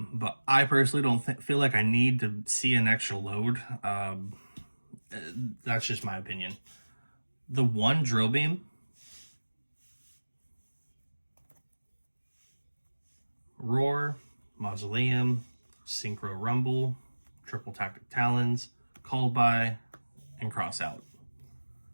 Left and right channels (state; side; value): inverted; both; correlation -1.00